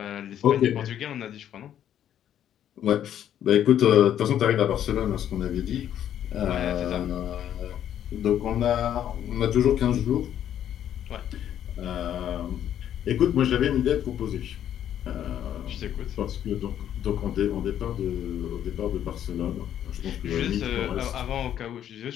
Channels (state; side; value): quieter; right; 10.4 dB